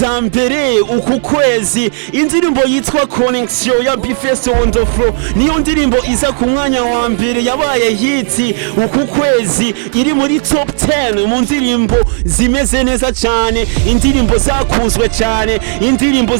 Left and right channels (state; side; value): silent; left; digital silence